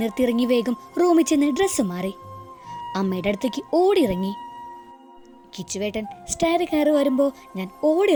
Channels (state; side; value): identical; both; correlation 1.00